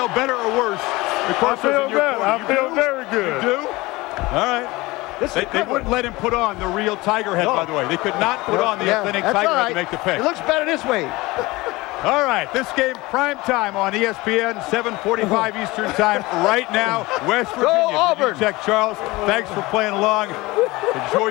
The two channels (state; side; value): quieter; right; 21.3 dB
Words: better or worse? I feel good. I feel very good. You do? All right. They wouldn't let him put on the real tiger head, by the way. They could not put on the authentic tiger head to make the pick. It looks better this way. All right, this game prime time on ESPN, 7:45 Eastern time right now. West Virginia. Go Auburn. Check, Charles. Thanks for playing along. Enjoy